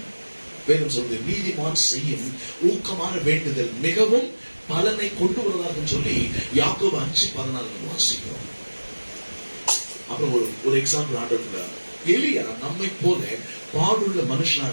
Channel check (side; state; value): both; inverted; correlation -1.00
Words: வேணும் சொல்றது நீதிமான் செய்யும் ஊக்கமான வேண்டுதல் மிகவும் பலனை கொண்டு வருவதாக சொல்லி யாக்கோபு 5:14 வாசிக்கிறோம். அப்புறம் ஒரு எக்ஸாம்பிள் ஆண்டவர், எலியா நம்மை போல பாடுள்ள மனுஷனா